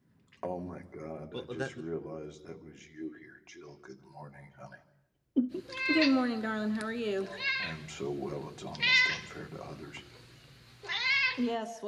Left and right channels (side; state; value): both; identical; correlation 1.00